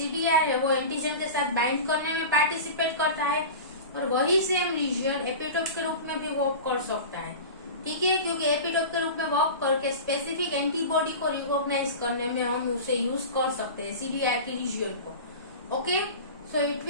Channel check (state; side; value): inverted; both; correlation -0.31